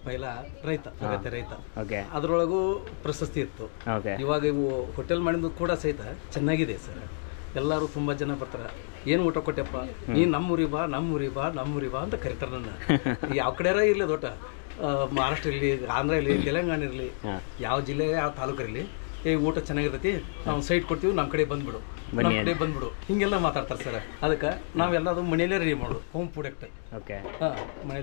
ಪೈಲ ರೈತ, ಅಗತ್ಯ ರೈತ. ಓಕೆ. ಅದರೊಳಗೂ ಪ್ರಶಸ್ತಿ ಇತ್ತು. ಓಕೆ. ಇವಾಗ ಇವು ಹೋಟೆಲ್ ಮಾಡಿದ್ದು ಕೂಡ ಸಹಿತ ಚೆನ್ನಾಗಿದೆ ಸರ್. ಎಲ್ಲರೂ ತುಂಬ ಜನ ಬರ್ತಾರೆ. ಏನು ಊಟ ಕೊಟ್ಟೆಪ್ಪ, ನೀನು ನಮ್ಮೂರಿ ಬಾ ನಮ್ಮೂರಿ ಬಾ ನಮ್ಮೂರಿ ಬಾ ಅಂತ ಕರಿತಾರೆ ನನ್ನ. ಯಾವ ಕಡೆಯಾರ ಇರಲಿ ದೊಡ್ಡ ಮಹಾರಾಷ್ಟ್ರ ಇರಲಿ, ಆಂಧ್ರ ಇರಲಿ, ತೆಲಂಗಾಣ ಇರಲಿ, ಯಾವ ಜಿಲ್ಲೆ ಯಾವ ತಾಲೂಕು ಇರಲಿ, ಊಟ ಚೆನ್ನಾಗಿರ್ತೈತಿ, ನಾವು ಸೈಟ್ ಕೊಡ್ತೀವಿ, ನಮ್ಮ ಕಡೆ ಬಂದ್ಬಿಡು, ನಮ್ಮ ಕಡೆ ಬಂದ್ಬಿಡು, ಹಿಂಗೆಲ್ಲ ಮಾತಾಡ್ತಾರೆ ಸರ್. ಅದಕ್ಕೆ ನಾವೆಲ್ಲದು ಮನೆಯಲ್ಲೇ ರೆಡಿ ಮಾಡೋದು, ಹೋಮ್ ಪ್ರಾಡಕ್ಟ್. ಓಕೆ.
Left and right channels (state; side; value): silent; right; digital silence